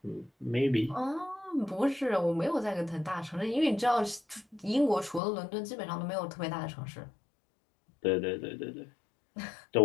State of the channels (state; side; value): drops out; right; at 5.2 s